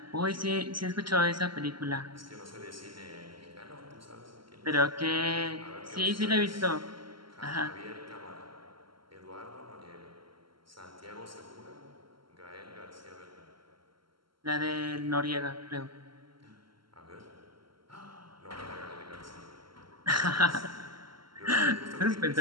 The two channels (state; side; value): late; left; 0.73 ms